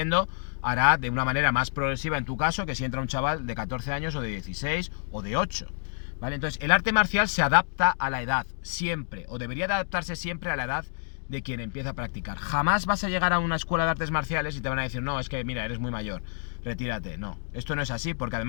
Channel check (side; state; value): right; silent; digital silence